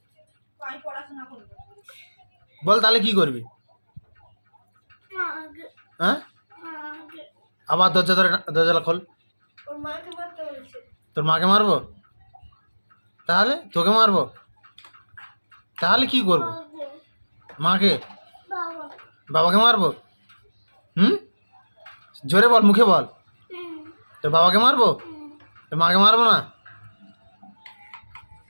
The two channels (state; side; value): inverted; both; correlation -1.00